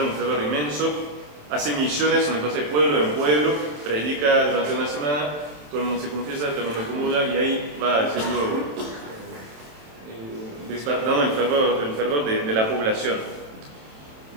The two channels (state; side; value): late; left; 27 ms